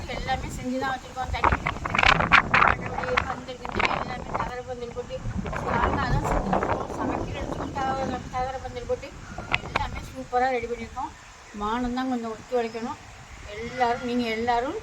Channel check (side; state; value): both; identical; correlation 1.00